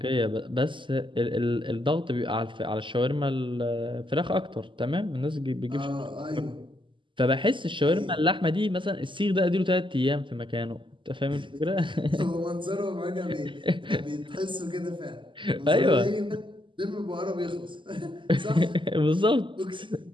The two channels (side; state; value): left; late; 0.24 ms